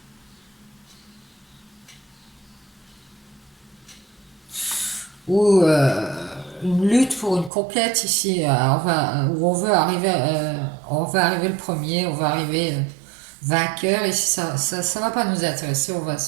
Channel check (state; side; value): drops out; left; at 7.5 s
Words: Ou une lutte pour une conquête ici, où on veut arriver le premier, on va arriver vainqueur, et si ça va pas nous intéresser, on va